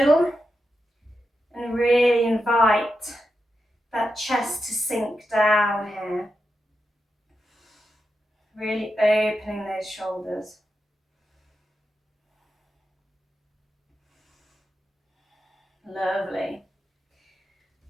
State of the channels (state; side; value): normal; both; correlation 0.88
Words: and really invite that chest to sink down here. Really opening those shoulders. Lovely.